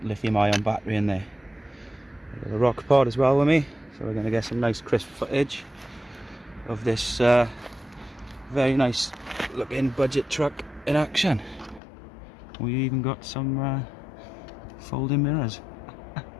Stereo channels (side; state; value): right; drops out; at 11.8 s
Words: lithium ion battery in there. I've got a rock pod as well with me, so we're going to get some nice crisp footage of this very nice looking budget truck in action. We even got some folding mirrors.